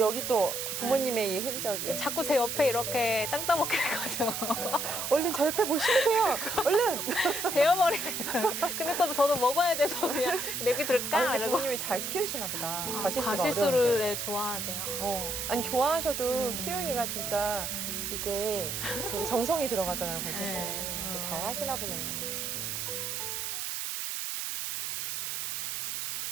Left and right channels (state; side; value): noise; right; hiss, 3 dB below the sound